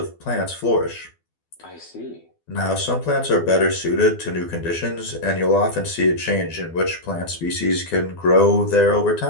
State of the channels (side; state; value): right; late; 12 ms